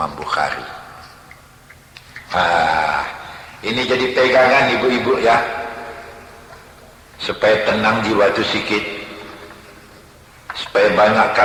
Bukhari. Ini jadi pegangan ibu-ibu ya, supaya tenang jiwa itu sikit. Supaya banyak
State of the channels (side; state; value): both; identical; correlation 1.00